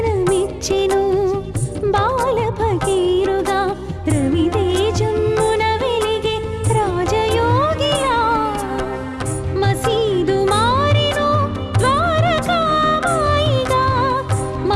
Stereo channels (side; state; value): both; identical; correlation 1.00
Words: బాల భగీరథుడా రవితేజమున వెలిగే రాజయోగిలా మసీదు మారెను ద్వారకామాయిగా